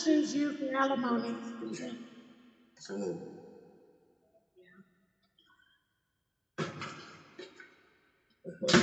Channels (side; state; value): both; identical; correlation 1.00